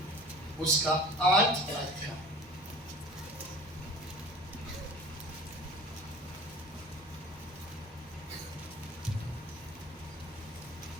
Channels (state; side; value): normal; both; correlation 0.42